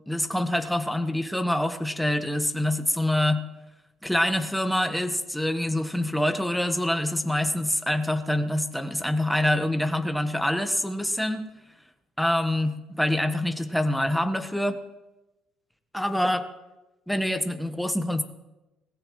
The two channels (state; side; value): normal; both; correlation 0.96